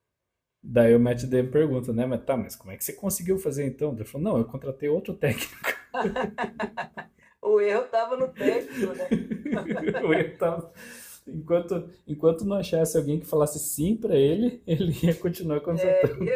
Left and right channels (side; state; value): both; identical; correlation 1.00